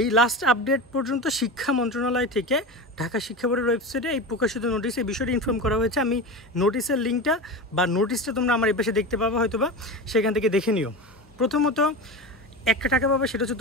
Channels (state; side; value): normal; both; correlation 0.25